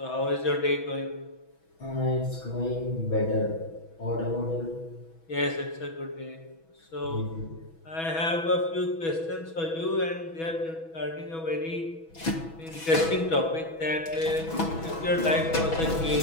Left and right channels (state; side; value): late; right; 6.1 ms